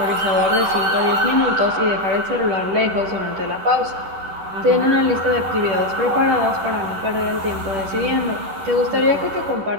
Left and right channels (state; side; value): late; left; 11 ms